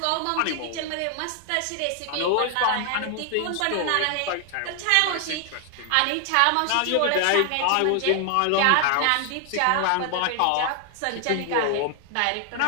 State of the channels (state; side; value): different; both; correlation 0.00